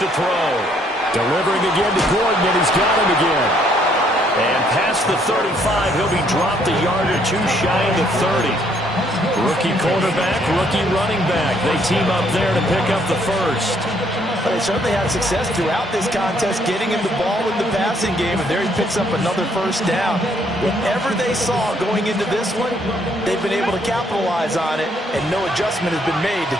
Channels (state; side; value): normal; both; correlation 0.68